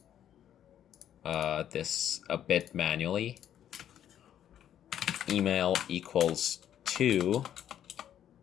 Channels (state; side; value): quieter; right; 10.4 dB